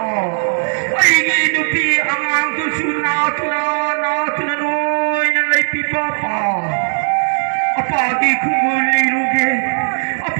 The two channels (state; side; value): silent; left; digital silence